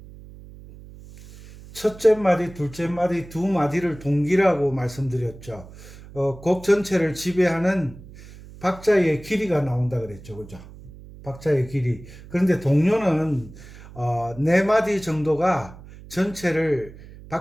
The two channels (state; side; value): noise; right; hum, 18 dB below the sound